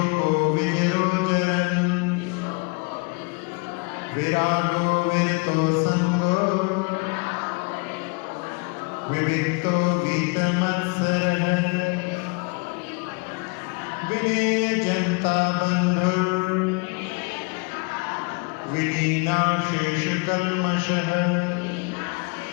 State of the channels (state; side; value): quieter; right; 31.0 dB